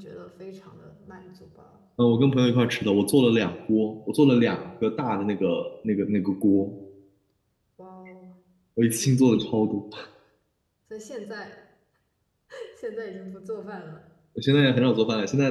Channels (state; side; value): identical; both; correlation 1.00